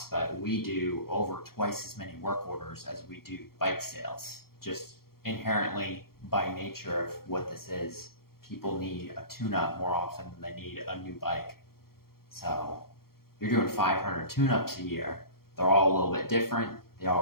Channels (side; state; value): right; late; 0.94 ms